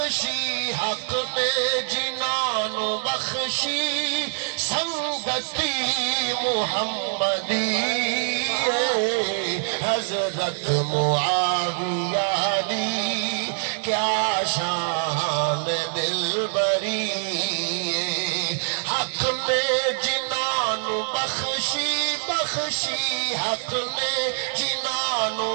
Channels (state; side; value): silent; left; digital silence